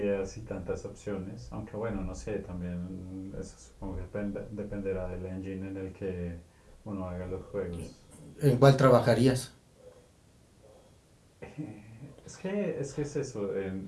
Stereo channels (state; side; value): identical; both; correlation 1.00